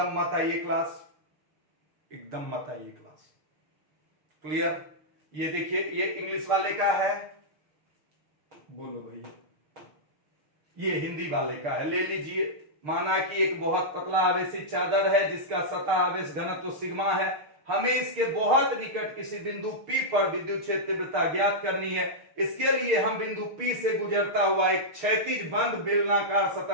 मत आइए क्लास, एकदम मत आइए क्लास। क्लियर? ये देखिए, ये इंग्लिश वाले का है, बोलो भैया, ये हिंदी वाले का है, ले लीजिए। माना कि एक बहुत पतला आवेशित चादर है जिसका सतह आवेश घनत्व सिग्मा है, हमें इसके बहुत निकट किसी बिंदु P पर विद्युत क्षेत्र तीव्रता ज्ञात करनी है। इसके लिए हम बिंदु P से गुजरता हुआ एक क्षैतिज बंद बेलनाकार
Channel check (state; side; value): late; left; 6.7 ms